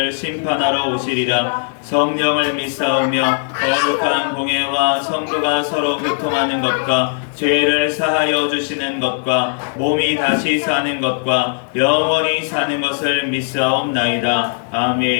심판하러 오시리라. 성령을 믿사오며 거룩한 공예와 성도가 서로 교통하는 것과 죄를 사하여 주시는 것과 몸이 다시 사는 것과 영원히 사는 것을 믿사옵나이다.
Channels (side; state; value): right; silent; digital silence